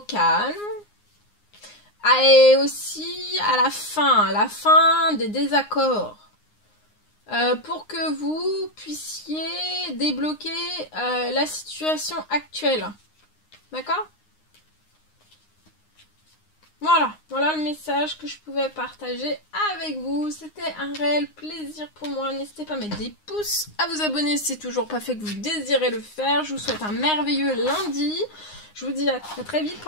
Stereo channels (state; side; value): late; right; 9.7 ms